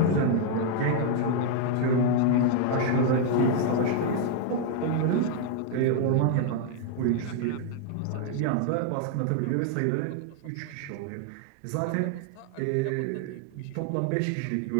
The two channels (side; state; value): both; different; correlation 0.00